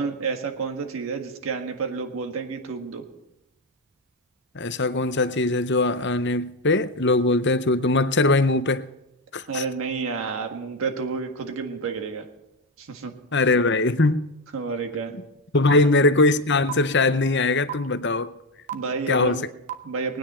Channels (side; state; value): both; normal; correlation 0.11